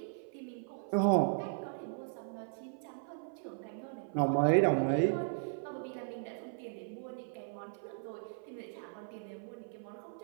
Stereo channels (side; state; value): left; silent; 53 dB below the other